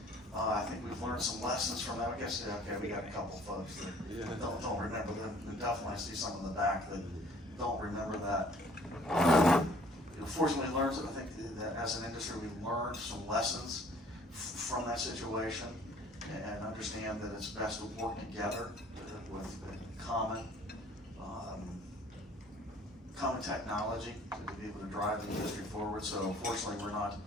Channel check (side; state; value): both; normal; correlation 0.55